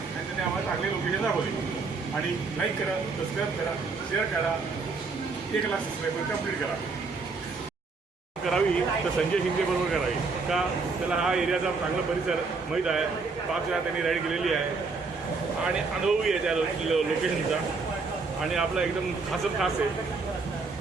आणि त्याने आम्हाला चांगले लोकेशन दाखवली. आणि लाईक करा, सबस्क्राईब करा, शेअर करा. 1 लाख सबस्क्राईबर कंप्लीट करा. करावी तर संजय शिंदे बरोबर करावी का त्याला हा एरियाचा चांगला परिसर माहीत आहे. 5 वेळा त्यांनी राईड केलेली आहे आणि अनुभवी आहे त्या लोकेशनचा आणि आपला एकदम खासच खास आहे.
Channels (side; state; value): left; quieter; 4.3 dB